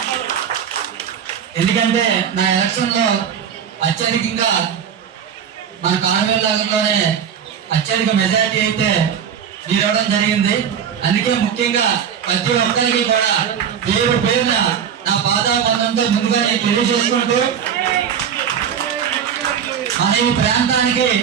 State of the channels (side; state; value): left; quieter; 8.1 dB